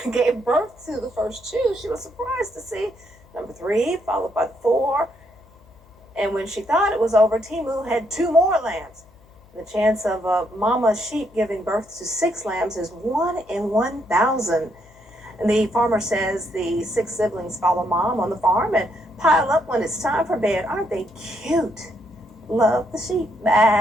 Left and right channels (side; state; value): left; noise; hum, 28 dB below the sound